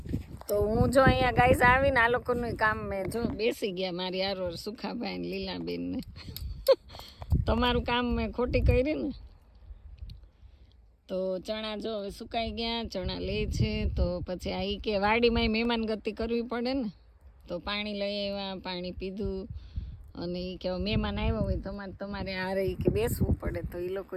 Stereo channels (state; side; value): identical; both; correlation 1.00